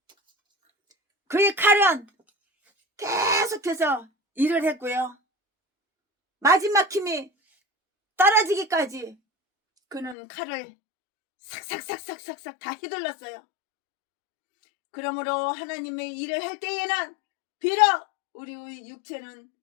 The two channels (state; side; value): drops out; right; at 10.2 s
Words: 그의 칼은 계속해서 일을 했고요. 마지막 힘이 떨어지기까지 그는 칼을 삭삭 다 휘둘렀어요. 그러므로 하나님의 일을 할 때에는 비록 우리의 육체는